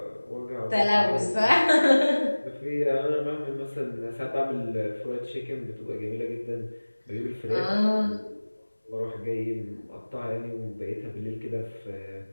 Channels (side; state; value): both; inverted; correlation -1.00